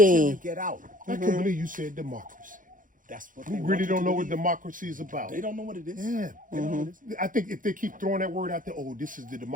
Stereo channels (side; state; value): left; late; 0.39 ms